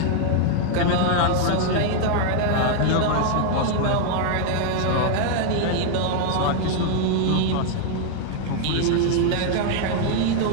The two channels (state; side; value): different; both; correlation 0.00